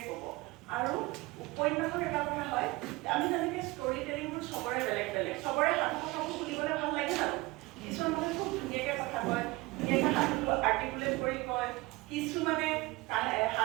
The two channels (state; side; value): quieter; left; 21.9 dB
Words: ক'ব। আৰু উপন্যাসৰ এটা কথা হয়, আমি যেনেকৈ ষ্টৰি টেলিংবোৰ চবৰে বেলেগ বেলেগ, চবৰে সাধু কথাবোৰ শুনিবলৈ ভাল লাগে জানো? কিছুমান মানুহে খুব ধুনীয়াকৈ কথা কয়, ধুনীয়াকৈ সাধুটো আৰ্টিকুলেট কৰি কয়, কিছুমানে